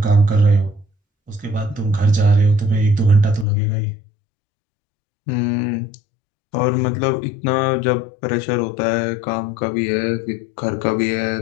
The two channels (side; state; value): right; drops out; at 3.5 s